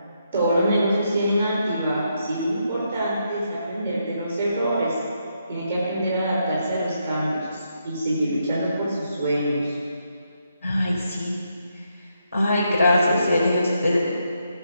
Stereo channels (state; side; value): inverted; both; correlation -0.79